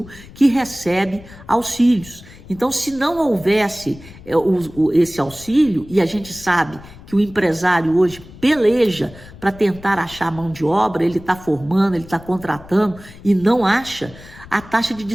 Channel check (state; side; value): noise; left; rumble, 19 dB below the sound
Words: que recebe auxílios. Então, se não houvesse esse auxílio, e a gente sabe que o empresário hoje peleja para tentar achar mão de obra, ele está formando, ele está contratando e não acha, a taxa de